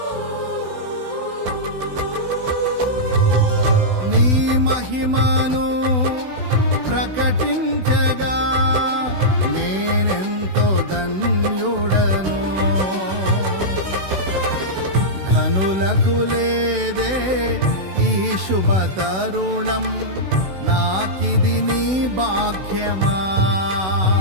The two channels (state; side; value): late; left; 16 ms